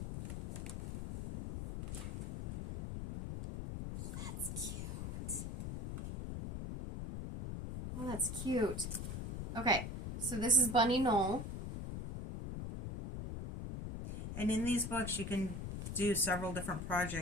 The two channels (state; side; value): noise; left; rumble, 6 dB below the sound